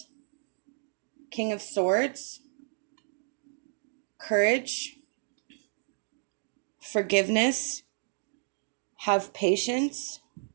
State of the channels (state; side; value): silent; left; digital silence